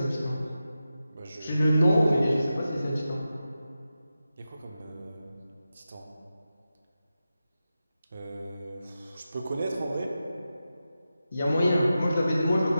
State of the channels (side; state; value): both; inverted; correlation -0.92